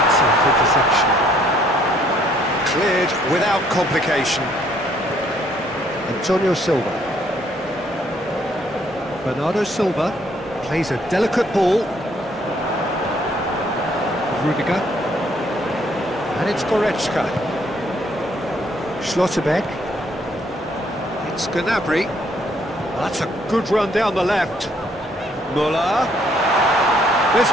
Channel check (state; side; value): normal; both; correlation 0.66